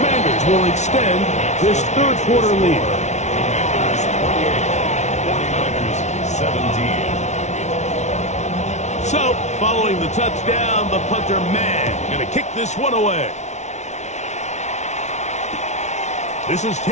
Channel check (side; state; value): right; late; 0.33 ms